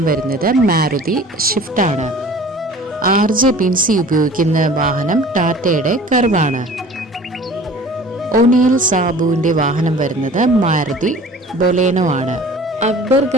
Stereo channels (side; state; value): both; normal; correlation 0.45